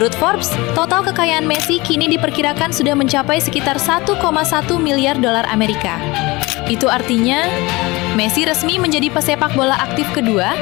Forbes, total kekayaan Messi kini diperkirakan sudah mencapai sekitar 1,1 miliar dolar Amerika. Itu artinya, Messi resmi menjadi pesepak bola aktif kedua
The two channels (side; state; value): right; quieter; 22.7 dB